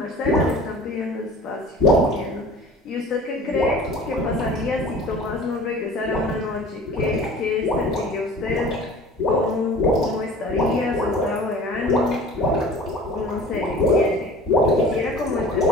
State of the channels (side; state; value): both; normal; correlation 0.43